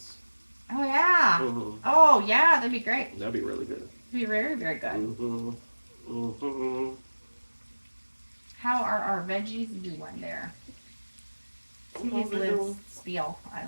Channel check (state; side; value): inverted; both; correlation -1.00